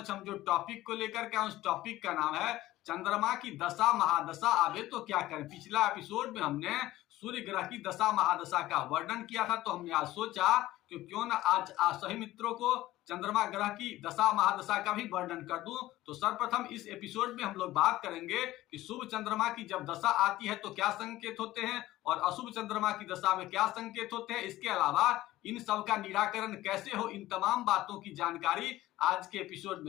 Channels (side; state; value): right; quieter; 16.1 dB